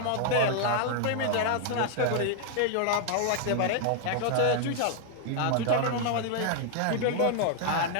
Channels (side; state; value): both; different; correlation 0.00